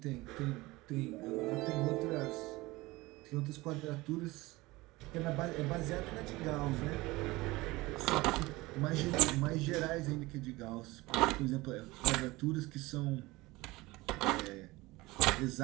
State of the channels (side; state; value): left; quieter; 20.9 dB